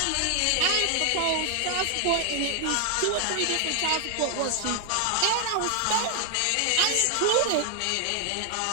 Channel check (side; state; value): both; different; correlation 0.00